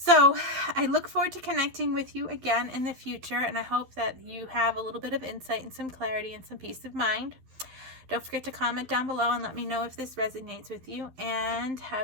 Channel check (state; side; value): late; left; 11 ms